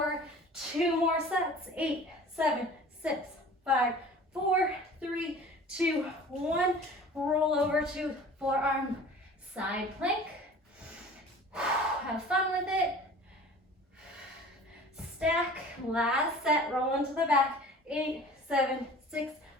2 more sets. 8, 7, 6, 5, 4, 3, 2, 1. Roll over to forearm side plank. Have fun with it. Stack, last set, roll into the back. 8, 7, 6,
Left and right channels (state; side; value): normal; both; correlation 0.43